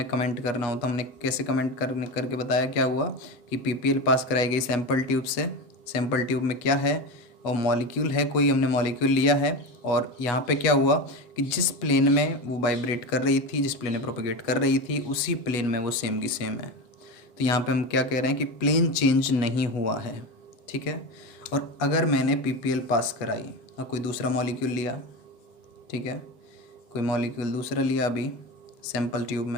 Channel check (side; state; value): right; late; 7.7 ms